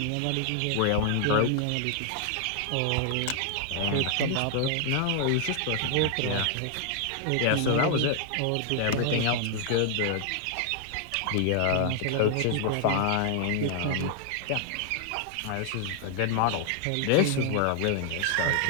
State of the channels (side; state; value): both; different; correlation 0.00